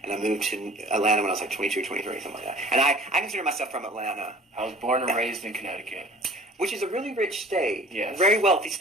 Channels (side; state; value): both; normal; correlation 0.48